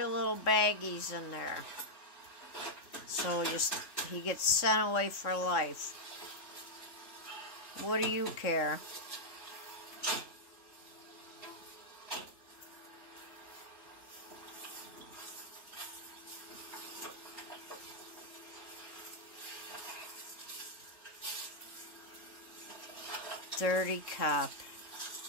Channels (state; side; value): late; right; 3.6 ms